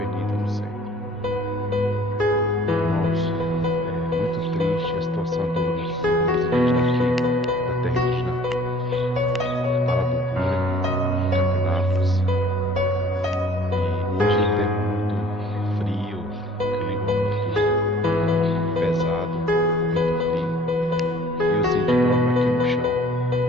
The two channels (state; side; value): normal; both; correlation 0.53